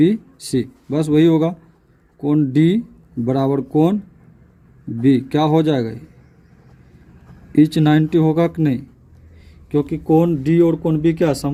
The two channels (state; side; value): identical; both; correlation 1.00